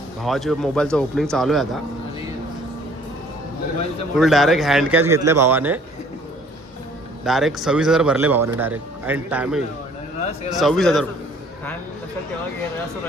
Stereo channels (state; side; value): normal; both; correlation 0.56